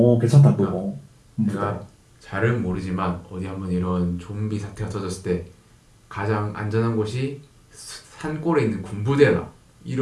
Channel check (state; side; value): identical; both; correlation 1.00